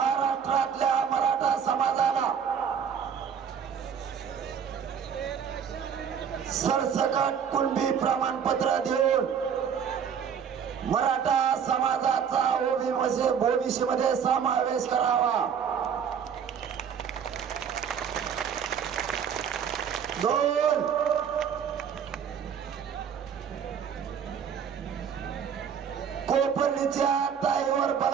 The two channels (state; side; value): quieter; left; 7.5 dB